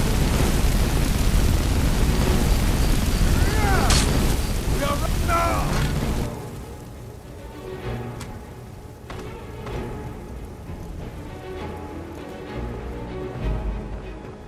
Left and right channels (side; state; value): both; identical; correlation 1.00